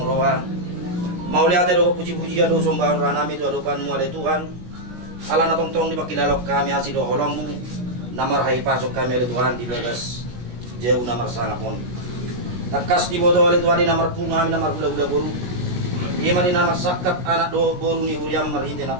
roa mau lihat do puji-puji ado sombang ranami tu adokan mu ada Tuhan ala na tong-tong di pakilalok kami asido holong namar hai pasok kami ada Tuhan di bagas jauh namar sangapon takas di bodo oleh Tuhan di namar punga kami namar gula-gula boru ima di namar sakap anak do boru ni huriam marhinte na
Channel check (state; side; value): late; left; 17 ms